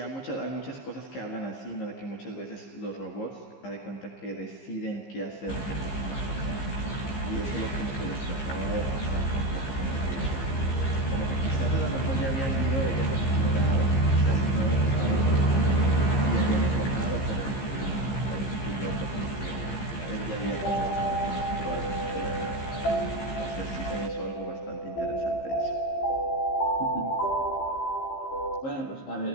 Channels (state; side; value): late; right; 15 ms